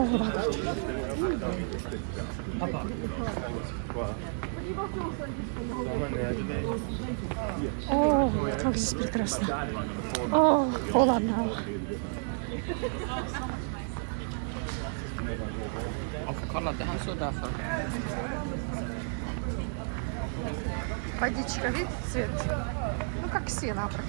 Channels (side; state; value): left; silent; 57 dB below the other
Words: vad gott. Pappa. Åh, как здесь прекрасно. Åh, холодно. Kolla, det här så därför. Водичка, видите, цвет? Ну, как сена